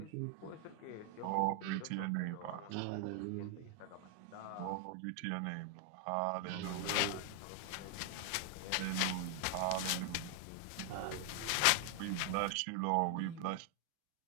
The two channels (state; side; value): different; both; correlation 0.00